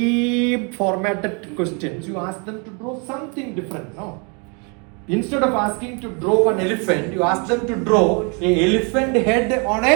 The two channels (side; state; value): left; quieter; 34.9 dB